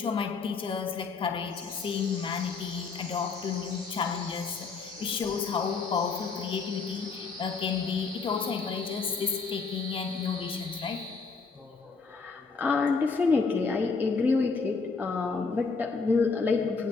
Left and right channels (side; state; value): right; quieter; 4.7 dB